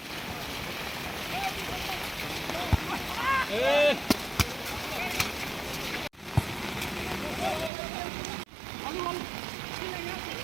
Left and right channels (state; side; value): drops out; left; at 7.7 s